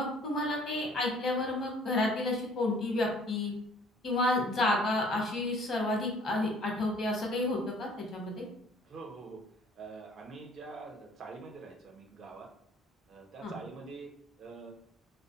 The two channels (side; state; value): both; normal; correlation 0.55